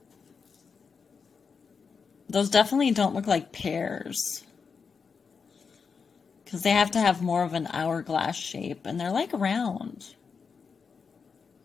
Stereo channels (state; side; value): quieter; right; 5.6 dB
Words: Those definitely don't look like pears, because they have to have more of an hourglass shape, and they're like round.